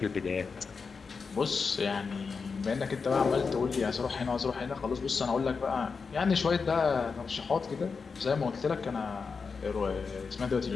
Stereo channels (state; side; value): quieter; right; 5.1 dB